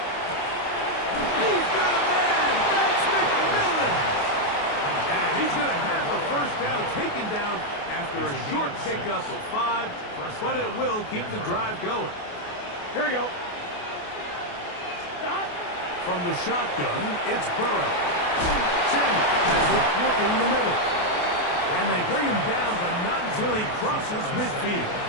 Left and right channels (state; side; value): late; right; 28 ms